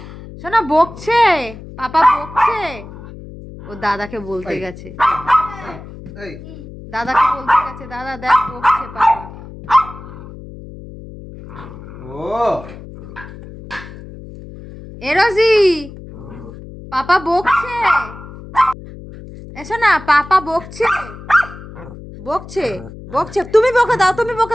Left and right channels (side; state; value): left; noise; hum, 15 dB below the sound